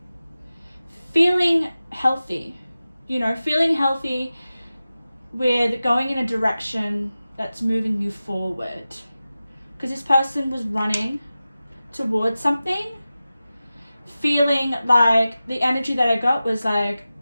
feeling healthy. Feeling healthy with going in a direction that's moving you forward. Because this person was running towards something, feeling like the energy that I got was like,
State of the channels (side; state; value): both; inverted; correlation -0.95